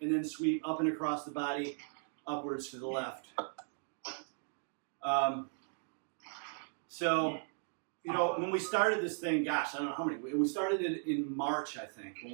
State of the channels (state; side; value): silent; left; 53 dB below the other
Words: and then sweep up and across the body, upwards to the left. So, you know, when we started this thing, gosh, I don't know how many. We started it in March, I think, when